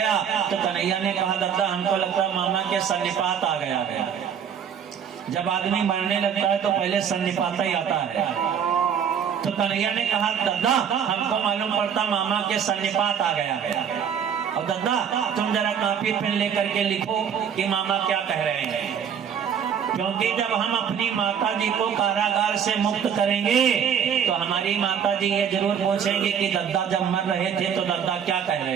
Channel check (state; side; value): quieter; left; 8.0 dB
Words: तो कन्हैया ने कहा, दादा हमको लगता है मामा के सन्निपात आ गया है। जब आदमी मरने लगता है तो पहले सन्निपात ही आता है। तो कन्हैया ने कहा, दादा हमको मालूम पड़ता मामा के सन्निपात आ गया है। और दादा तुम जरा कॉपी पेन लेकर के लिखो कि मामा क्या कह रहे हैं, क्योंकि जब हम अपनी माता जी को कारागार से मुक्त करेंगे तो हमारी माता जी ये जरूर पूछेंगे कि दादा जब मर रहे थे तो दादा क्या कह